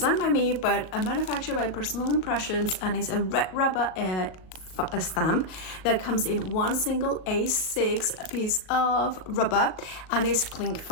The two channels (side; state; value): right; late; 38 ms